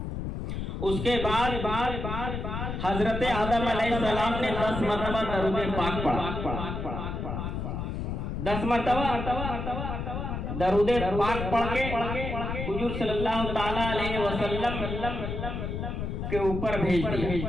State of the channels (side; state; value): left; noise; rumble, 4 dB below the sound